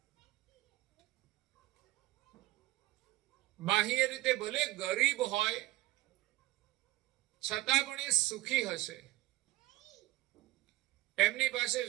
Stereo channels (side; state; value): left; quieter; 18.0 dB